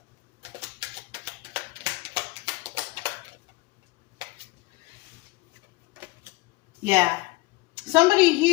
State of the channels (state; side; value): quieter; right; 22.2 dB